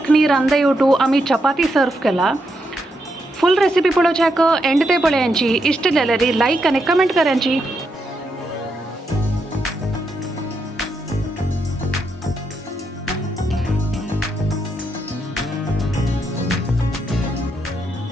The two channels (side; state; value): both; normal; correlation 0.81